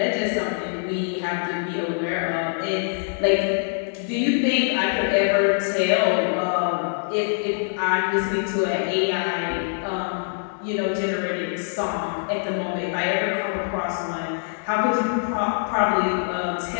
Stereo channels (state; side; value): silent; right; digital silence